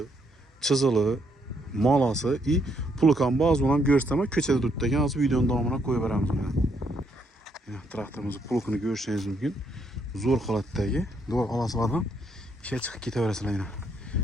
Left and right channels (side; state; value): both; normal; correlation 0.73